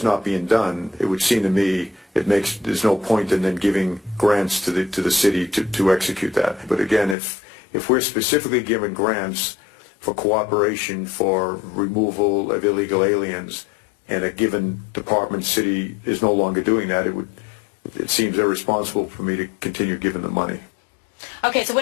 not being done, it would seem to me there's no point in then giving grants to the city to execute that. But again, if we're specifically giving grants for cooperation for removal of illegal aliens, and a given department city is no longer doing that, it seems irresponsible for me to continue giving them money. Okay, so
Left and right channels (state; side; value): drops out; right; at 7.2 s